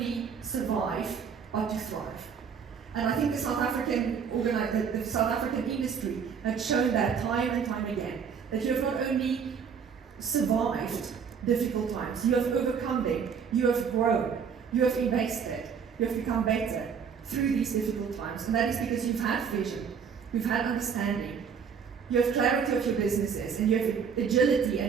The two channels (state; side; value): quieter; left; 6.7 dB